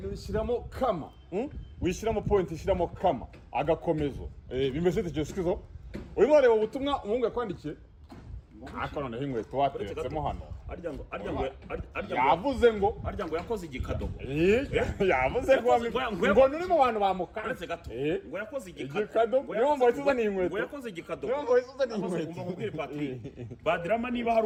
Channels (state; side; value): identical; both; correlation 1.00